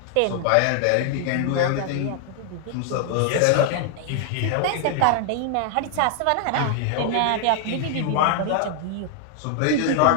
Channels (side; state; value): both; different; correlation 0.00